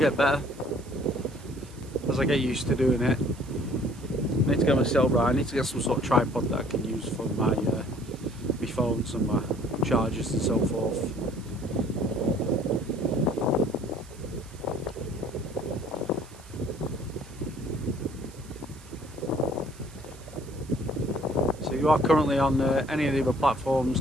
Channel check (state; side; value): noise; right; hiss, 22 dB below the sound